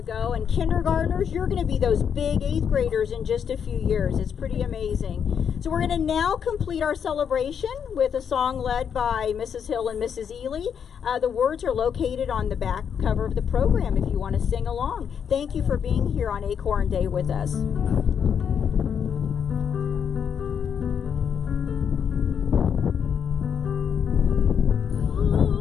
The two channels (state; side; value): quieter; right; 7.6 dB